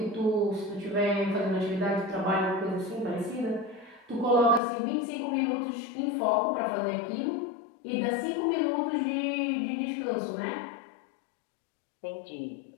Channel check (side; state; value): right; drops out; at 4.6 s